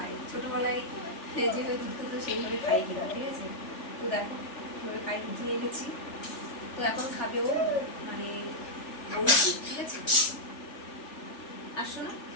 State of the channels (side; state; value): right; late; 3.4 ms